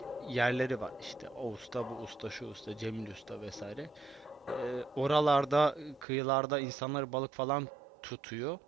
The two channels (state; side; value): drops out; left; at 6.1 s